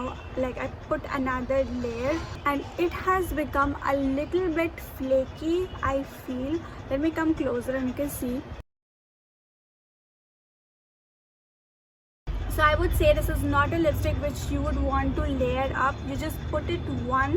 Like, I put another layer and it has become a little bit flaky, I feel. Let me come closer and you can see. So I would say this is not a lipstick which you would want to layer up. You just put it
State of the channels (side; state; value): both; identical; correlation 1.00